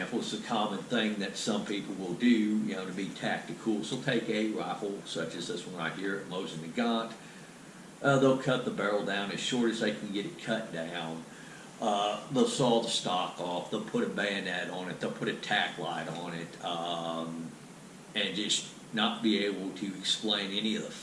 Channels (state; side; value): identical; both; correlation 1.00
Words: It's a common thing that some people will do, you know, to be tactical. So take a rifle such as this one right here, Mosin Nagant. They'll cut the barrel down as short as they can get it cut down. They'll saw the stock off. They'll put a bayonet on it. They'll put a tack light on it, and just not be able to explain any of the